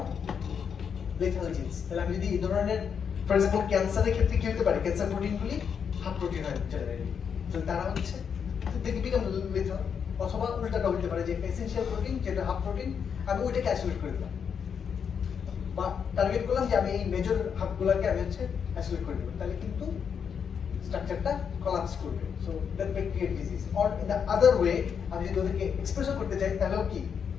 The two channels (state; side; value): quieter; right; 7.1 dB